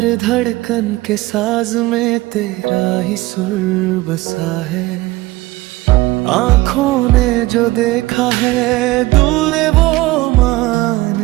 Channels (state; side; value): quieter; left; 19.3 dB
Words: धड़कन के साज में तेरा ही सुर बसा है। आँखों ने जो देखा है दिल ने वो मान